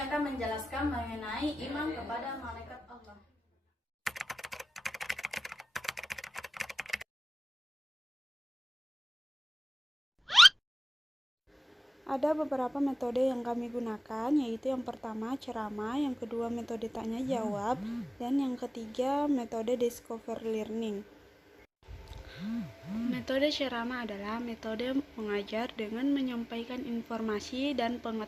akan menjelaskan mengenai iman kepada malaikat Allah. Ada beberapa metode yang kami gunakan, yaitu yang pertama ceramah, yang kedua metode tanya jawab, dan yang ketiga metode discovery learning. Metode ceramah adalah metode mengajar dengan menyampaikan informasi dan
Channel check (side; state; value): both; normal; correlation 0.97